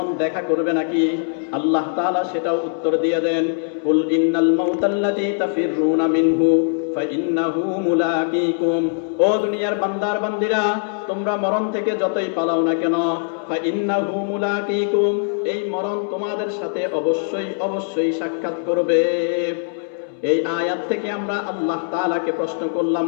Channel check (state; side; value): silent; right; 65 dB below the other